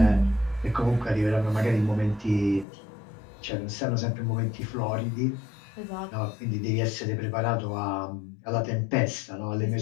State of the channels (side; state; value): right; drops out; at 2.7 s